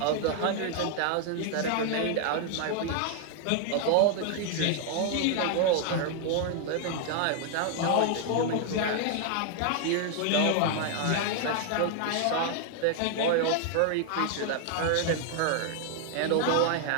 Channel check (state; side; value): different; both; correlation 0.00